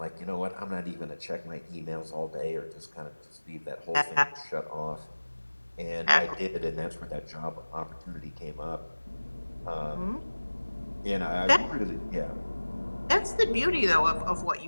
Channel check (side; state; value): both; inverted; correlation -1.00